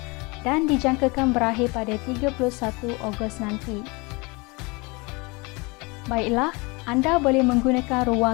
dan dijangkakan berakhir pada 31 Ogos nanti. Baiklah, anda boleh menggunakan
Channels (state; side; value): quieter; right; 27.0 dB